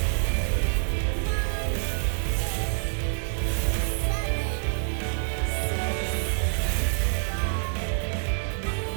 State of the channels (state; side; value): silent; left; 60 dB below the other